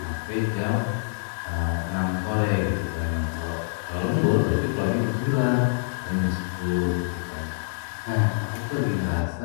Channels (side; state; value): right; silent; digital silence